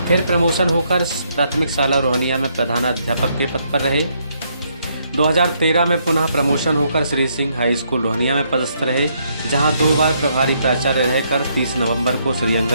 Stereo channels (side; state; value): both; inverted; correlation -0.73